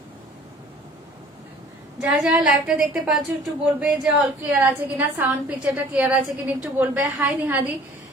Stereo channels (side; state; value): both; normal; correlation 0.50